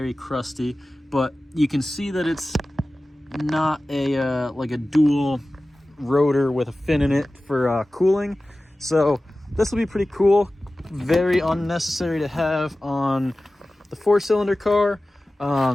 crusty, but you can see that it's not a like a dual rotor with a fin in it for cooling. So this will be pretty cool. Very unnecessary to have on the 4-cylinder car.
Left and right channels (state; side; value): normal; both; correlation 0.96